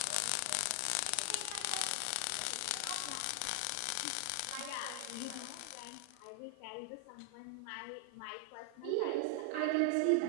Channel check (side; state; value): both; different; correlation 0.00